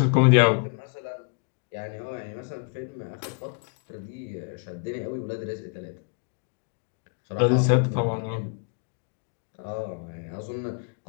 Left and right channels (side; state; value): right; quieter; 38.6 dB